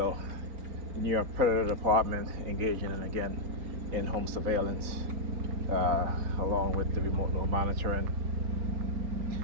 New York Predator Department engaging in again in-home surveillance, along with the remote node monitoring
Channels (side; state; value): left; late; 3.9 ms